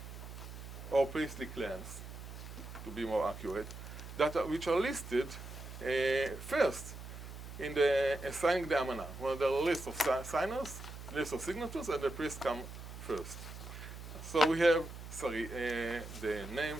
or priestly clans, to be more accurate, which are listed first in the signing the Amanah. Well, there are a list of signers, list of signatures, and the priests come first. So we have, the names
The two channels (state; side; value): noise; right; hum, 11 dB below the sound